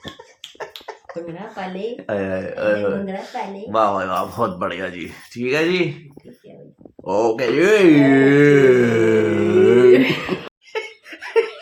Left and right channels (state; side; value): identical; both; correlation 1.00